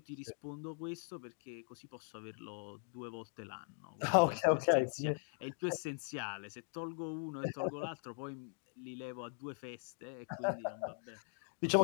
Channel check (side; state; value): right; silent; 51 dB below the other